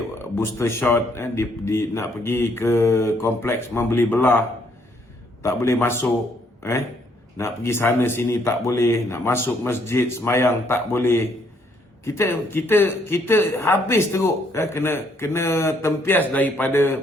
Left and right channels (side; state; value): both; normal; correlation 0.69